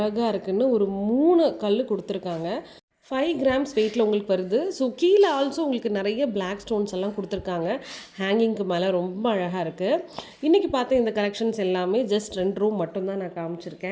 இருக்குன்னு. ஒரு 3 கல் கொடுத்துருக்காங்க. 5 கிராம்ஸ் வெயிட்டில் உங்களுக்கு வருது. ஸோ கீழே ஆல்சோ உங்களுக்கு நிறைய பிளாக் ஸ்டோன்ஸ் எல்லாம் கொடுத்துருக்காங்க. ஹேங்கிங்க்கு மேலே ரொம்ப அழகாக இருக்குது. இன்றைக்கி பார்த்த இந்த கலெக்ஷன்ஸ் எல்லாமே ஜஸ்ட் 2 ரூம் மட்டும்தான் நான்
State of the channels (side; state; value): both; identical; correlation 1.00